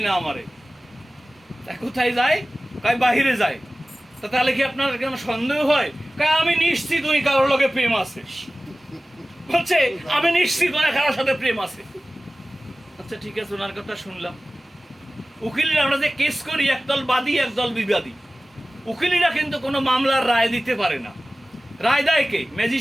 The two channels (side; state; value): both; normal; correlation 0.97